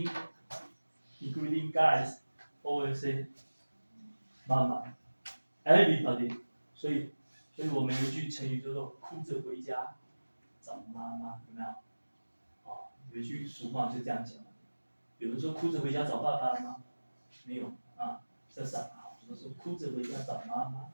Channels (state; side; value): inverted; both; correlation -1.00